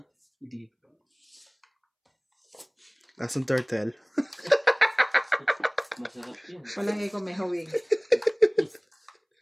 Hindi pa. Asong turtle. Masarap yun. Palagi ko may hawig.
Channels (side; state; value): both; identical; correlation 1.00